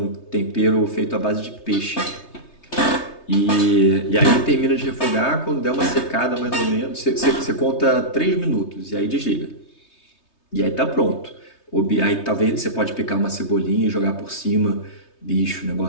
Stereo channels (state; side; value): late; right; 3.3 ms